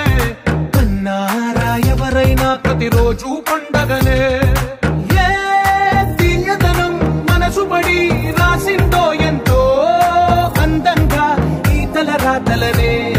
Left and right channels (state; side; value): identical; both; correlation 1.00